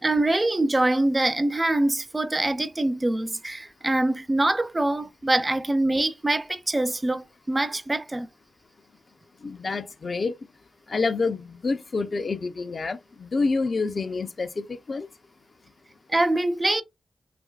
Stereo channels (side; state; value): both; normal; correlation 0.95